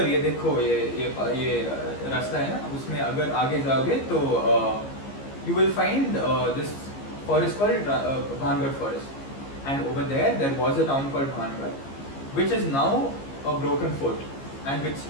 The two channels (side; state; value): right; late; 15 ms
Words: ये देखो ये रास्ता है ना, उसमें अगर आगे जाओगे तो you will find this forest called Bhangar Forest, and over there was a town called Bhangar, which is now a broken fort, and